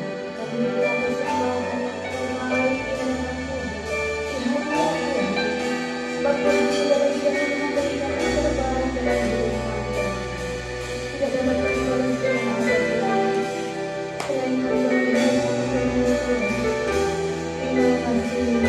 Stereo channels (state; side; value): identical; both; correlation 1.00